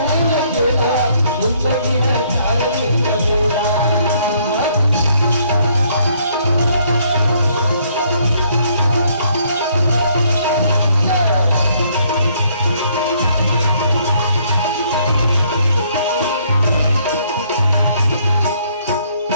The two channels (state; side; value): inverted; both; correlation -0.66